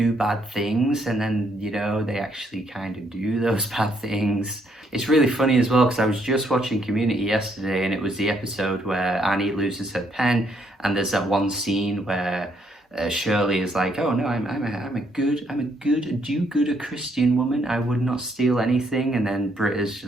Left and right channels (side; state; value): both; normal; correlation 0.72